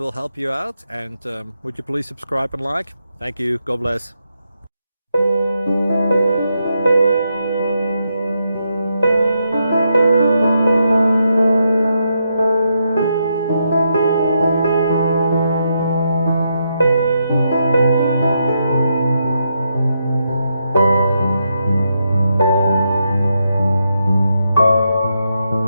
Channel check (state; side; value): inverted; both; correlation -0.82